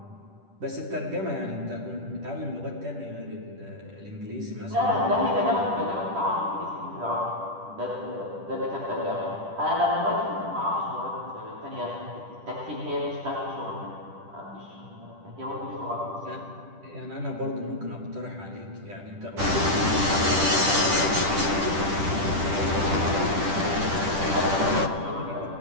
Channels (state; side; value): late; left; 10 ms